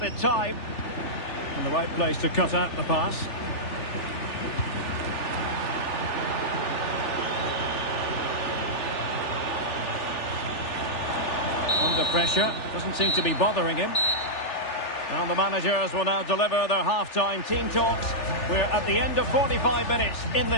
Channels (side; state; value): right; late; 3.4 ms